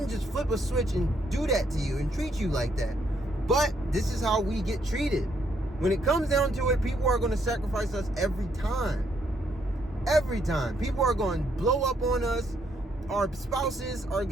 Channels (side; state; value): both; normal; correlation 0.73